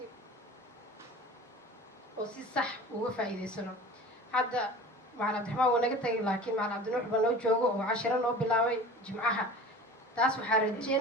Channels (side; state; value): both; normal; correlation 0.39